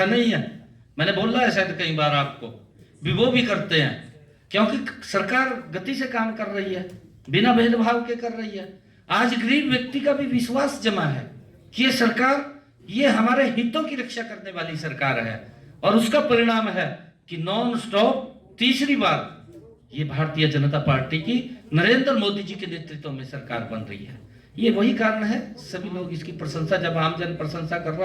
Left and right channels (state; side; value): identical; both; correlation 1.00